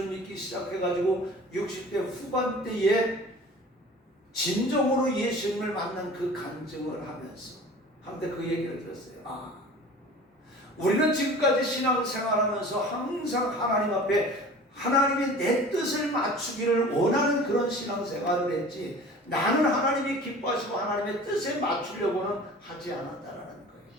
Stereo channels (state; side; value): normal; both; correlation 0.42